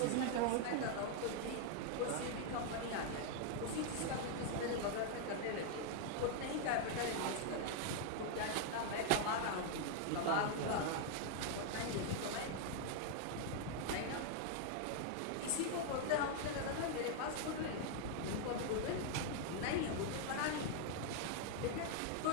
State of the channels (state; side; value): different; both; correlation 0.00